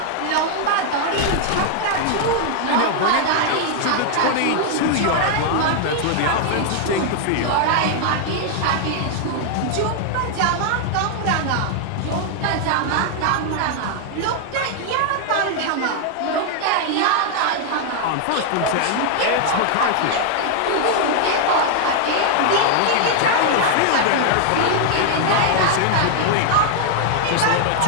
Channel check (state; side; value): different; both; correlation 0.00